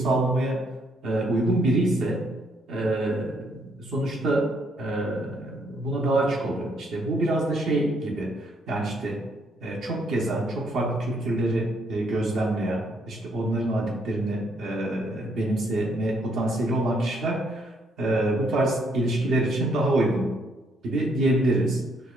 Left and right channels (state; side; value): normal; both; correlation 0.71